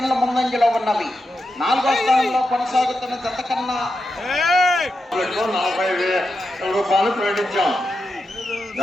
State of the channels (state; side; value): normal; both; correlation 0.88